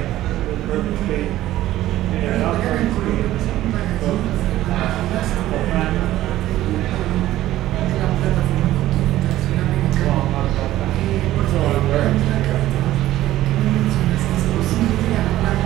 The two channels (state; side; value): quieter; left; 14.6 dB